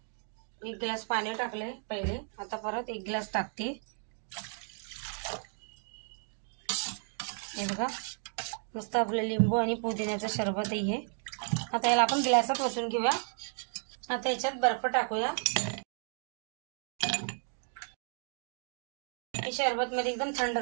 1 ग्लास पाणी टाकले पहिले, आता परत 1 ग्लास टाकते। हे बघा, मस्त आपलं लिंबू आणि पुदिन्याचं सरबत आहे। आता याला आपण ग्लासात ओतून घेऊया। आता याच्यात बर्फ टाकूया। हे सरबत मध्ये एकदम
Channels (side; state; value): left; silent; 55 dB below the other